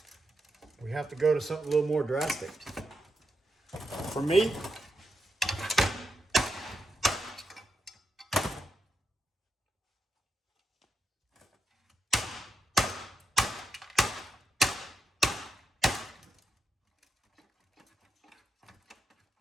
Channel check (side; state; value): both; normal; correlation 0.85